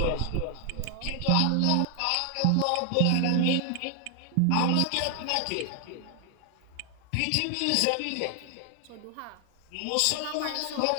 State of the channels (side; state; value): both; different; correlation 0.00